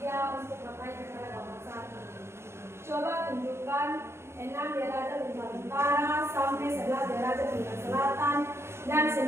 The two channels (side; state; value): left; late; 0.12 ms